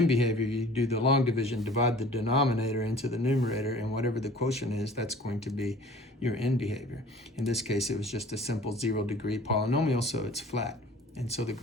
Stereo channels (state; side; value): normal; both; correlation 0.47